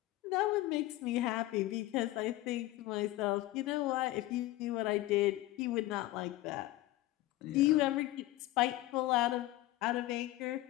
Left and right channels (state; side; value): quieter; right; 16.9 dB